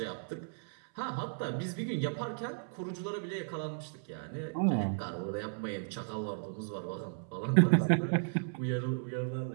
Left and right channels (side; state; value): left; silent; 55 dB below the other